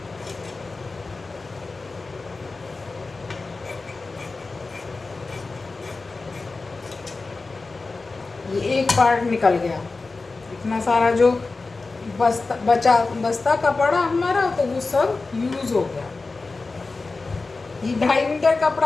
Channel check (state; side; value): quieter; right; 3.8 dB